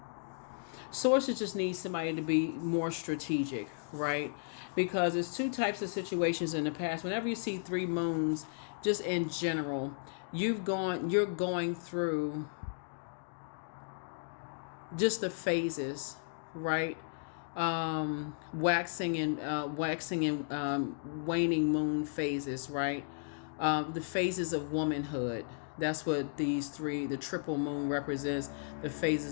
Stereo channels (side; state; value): right; silent; digital silence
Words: Sources just need somebody to be more strategic, right? Because there's 2 types of situations in the past. Whenever you see 3 moons, just in general... you're going through just the phases, right? Waxing and waning moon phases, right? The phases of womanhood. That's what these 3, the triple moon represents, the